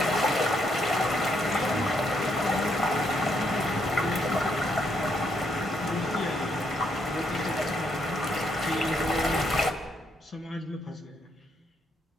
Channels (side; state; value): both; normal; correlation 0.75